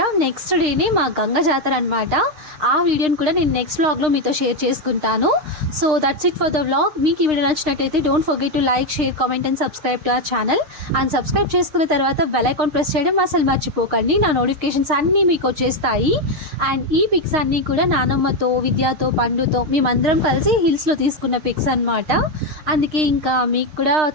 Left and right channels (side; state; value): left; late; 6.5 ms